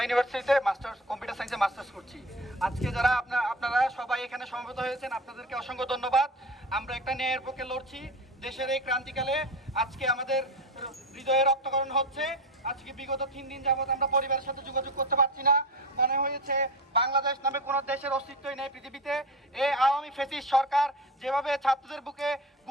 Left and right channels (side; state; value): both; normal; correlation 0.29